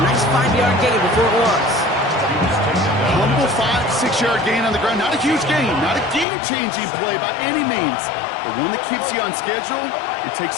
nice 5-yard gain before it was. Humble 5-6-yard gain on the ground. Not a huge gain, not a game-changing play by any means, but one that keeps you on schedule and takes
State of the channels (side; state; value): right; drops out; at 6.2 s